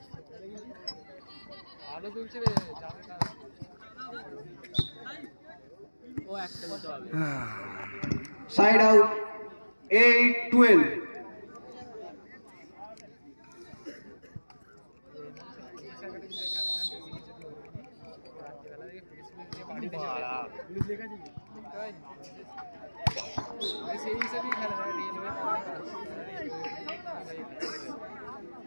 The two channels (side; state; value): both; inverted; correlation -1.00